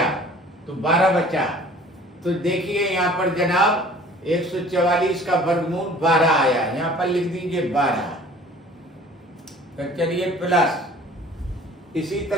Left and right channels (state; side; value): normal; both; correlation 0.49